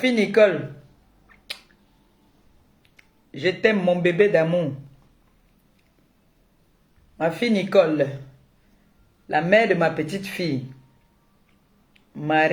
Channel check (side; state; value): both; identical; correlation 1.00